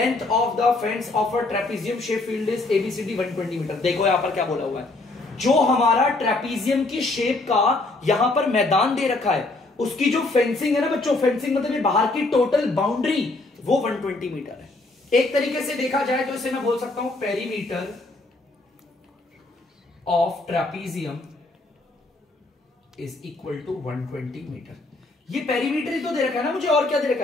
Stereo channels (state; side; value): quieter; right; 3.1 dB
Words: of the fence of a trapezium shape field is ABCD 120 metre. देखो यहां पर क्या बोला हुआ है, जो हमारा ट्रेपीजियम की शेप का यहां पर मैदान दे रखा है, उसकी जो फेंसिंग है ना बच्चों, फेंसिंग मतलब ये बाहर की टोटल बाउंड्री, वो 120 मीटर है। एक तरीके से देखा जाए तो इसे मैं बोल सकता हूं perimeter of trapezium is equal to 120 metre. ये पेरीमीटर ही तो दे रखा है ना मुझे, और क्या दे रखा